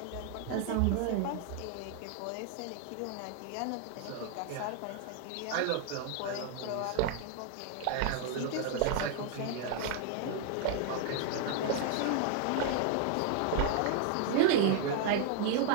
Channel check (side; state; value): both; different; correlation 0.00